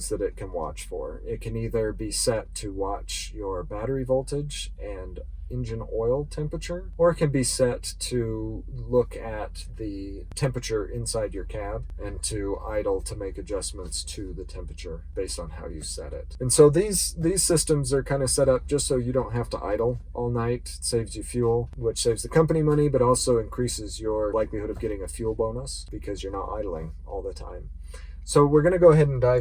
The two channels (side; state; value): both; identical; correlation 1.00